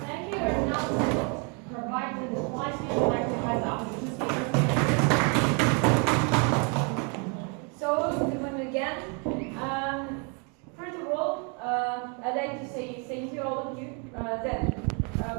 Thank you. And now to provide the slides, we would like to have the opportunity to speak. So, good morning again. First of all, I'd like to say thank you all of you. That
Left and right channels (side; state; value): left; quieter; 35.9 dB